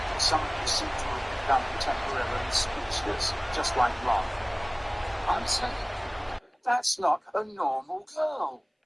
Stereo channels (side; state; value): both; identical; correlation 1.00